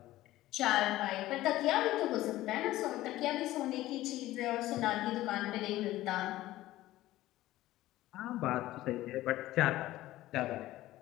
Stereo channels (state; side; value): quieter; right; 16.0 dB